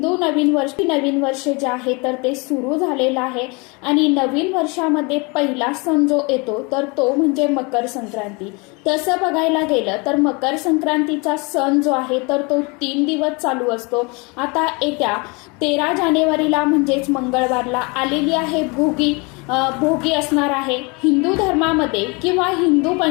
नवीन वर्ष जे आहे तर ते सुरू झालेलं आहे आणि नवीन वर्षामध्ये पहिला सण जो येतो तर तो म्हणजे मकर संक्रांती. तसं बघायला गेलं तर मकर संक्रांतीचा सण जो आहे तर तो 3 दिवस चालू असतो. आता येत्या 13 जानेवारीला म्हणजेच मंगळवारला आलेली आहे भोगी असणार आहे. हिंदू धर्मामध्ये किंवा हिंदू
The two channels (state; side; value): quieter; right; 29.2 dB